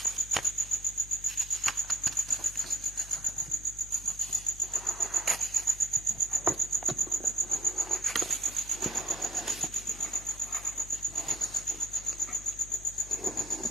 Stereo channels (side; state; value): left; noise; hum, 15 dB below the sound